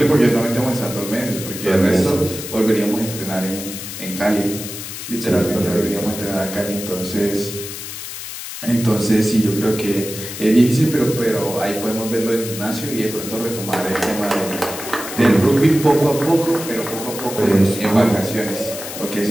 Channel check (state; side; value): noise; left; hiss, 9 dB below the sound